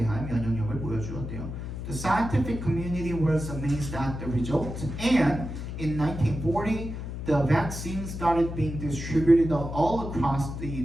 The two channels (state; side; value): noise; left; hum, 7 dB below the sound